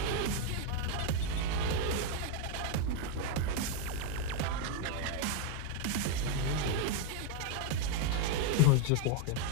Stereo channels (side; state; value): both; different; correlation 0.01